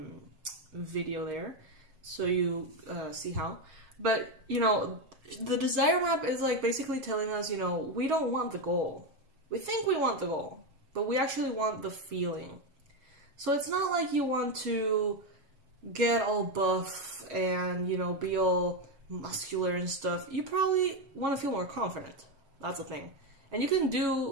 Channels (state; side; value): late; left; 7.6 ms